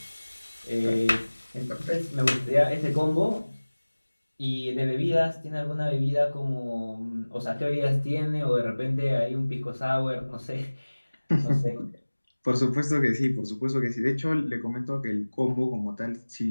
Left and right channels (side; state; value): both; inverted; correlation -1.00